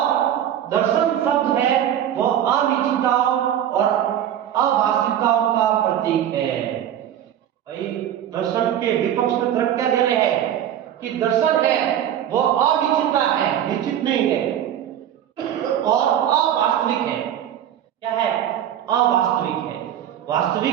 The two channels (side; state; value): left; quieter; 10.5 dB